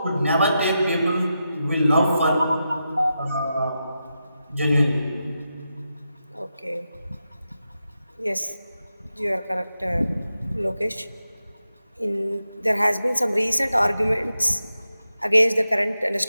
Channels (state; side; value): inverted; both; correlation -0.88